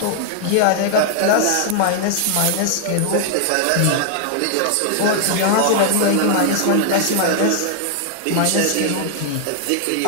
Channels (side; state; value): both; different; correlation 0.00